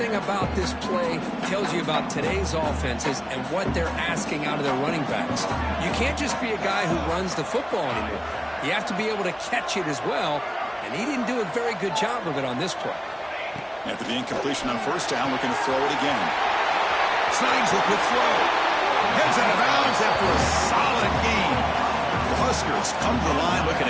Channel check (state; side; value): identical; both; correlation 1.00